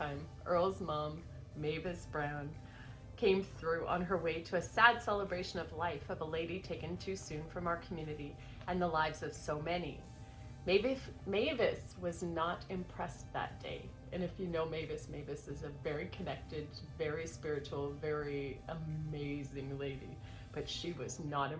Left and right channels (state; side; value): identical; both; correlation 1.00